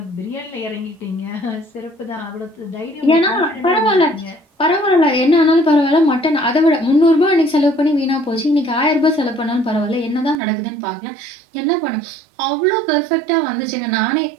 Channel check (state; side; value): drops out; left; at 10.4 s